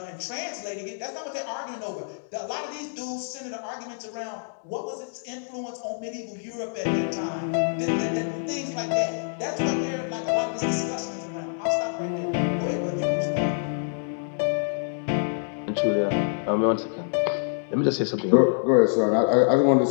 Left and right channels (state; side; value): silent; right; digital silence